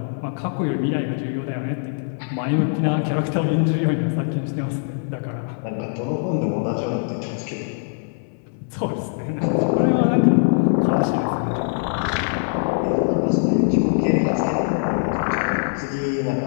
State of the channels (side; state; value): right; silent; 64 dB below the other